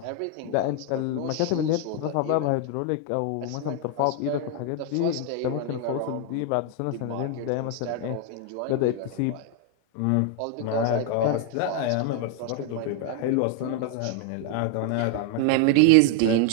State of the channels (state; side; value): different; both; correlation 0.00